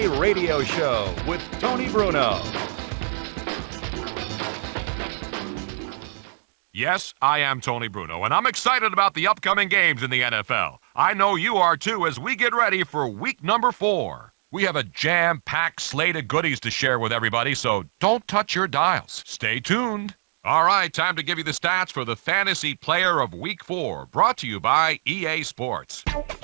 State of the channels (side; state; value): left; silent; digital silence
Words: Radio Show with Tony Bruno. Yes, I am Tony Bruno, and I'm excited about the upcoming games in the NFL. I know you are too as we get ready for week number 4. We have a jam-packed slate of goodies to share with everybody, so don't touch your dials. Stay tuned. All right, time to give you the stats for the Fantasy Player of Week 4, brought to you by EA Sports.